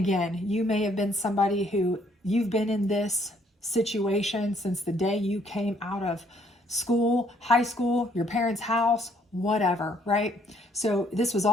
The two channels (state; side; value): normal; both; correlation 0.66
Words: you may have been somebody who you've been in this situation since the day you came out of school, high school, your parents' house, whatever, right? So this was